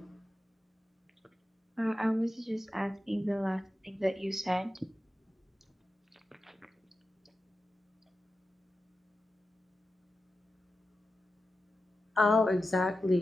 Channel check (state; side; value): normal; both; correlation 0.91